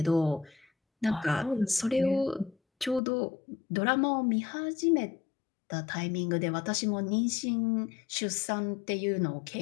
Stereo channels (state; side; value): drops out; right; at 3.0 s